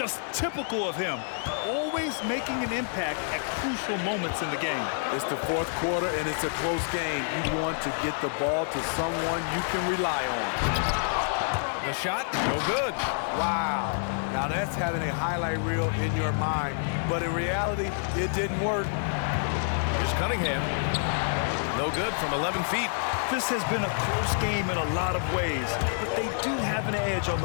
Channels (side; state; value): right; silent; digital silence